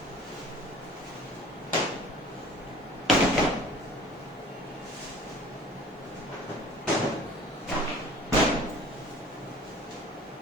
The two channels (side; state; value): both; normal; correlation 0.46